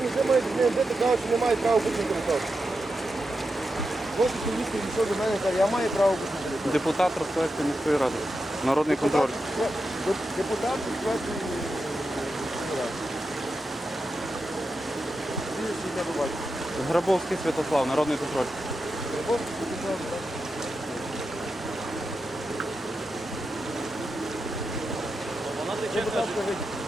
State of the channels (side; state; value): both; normal; correlation 0.88